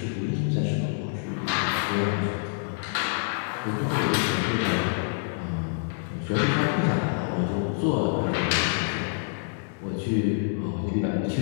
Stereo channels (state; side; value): silent; right; 60 dB below the other